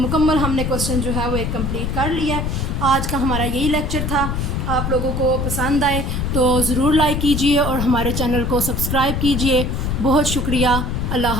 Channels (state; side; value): noise; left; rumble, 1 dB below the sound